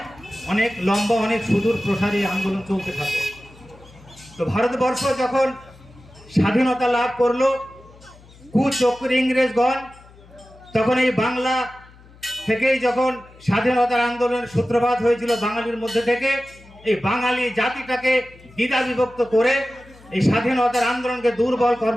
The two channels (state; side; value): noise; left; hum, 24 dB below the sound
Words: অনেক লম্বা, অনেক সুদূর প্রসারী আন্দোলন চলতে থাকে। তো ভারতবর্ষ যখন স্বাধীনতা লাভ করলো কুচক্রী ইংরেজগণ, তখন এই বাংলা থেকেই যখন স্বাধীনতার আন্দোলনের সূত্রপাত হয়েছিল বাঙালির মধ্যে থেকে, এই বাঙালি জাতিটাকে দ্বিধা বিভক্ত করে এই স্বাধীনতার আন্দোলনকে দুর্বল